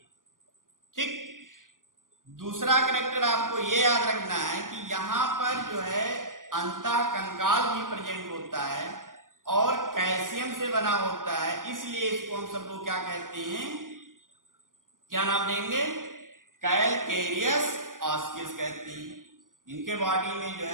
ठीक, दूसरा कैरेक्टर आपको ये याद रखना है कि यहाँ पर जो है अंतःकंकाल भी प्रेजेंट होता है और कैल्शियम से बना होता है, इसलिए इसको हम सब लोग क्या कहते हैं, क्या नाम देंगे? कैलकेरियस ऑस्किल्स कहते हैं। इनके बॉडी में जो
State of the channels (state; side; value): late; left; 0.89 ms